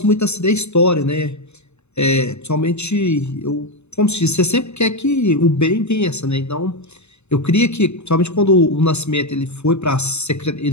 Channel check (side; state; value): right; late; 0.81 ms